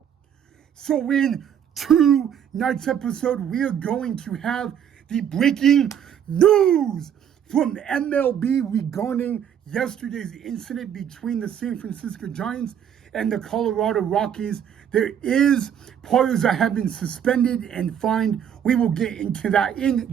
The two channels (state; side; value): quieter; left; 8.9 dB